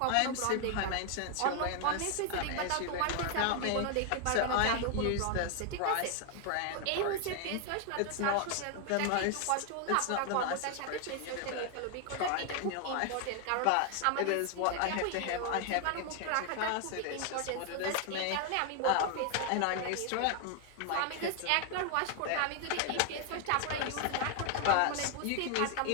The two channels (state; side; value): different; both; correlation 0.00